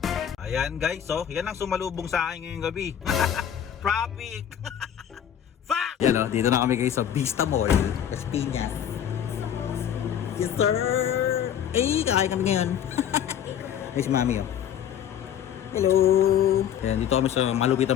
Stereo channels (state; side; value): quieter; right; 9.6 dB